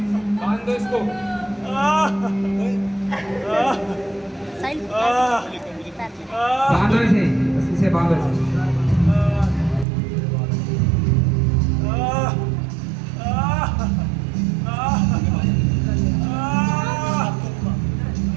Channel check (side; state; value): left; drops out; at 9.9 s